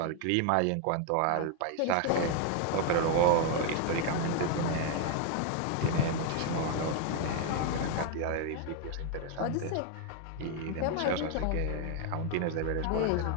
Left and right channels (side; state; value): both; different; correlation 0.01